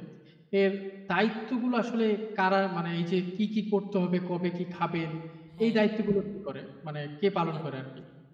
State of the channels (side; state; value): both; identical; correlation 1.00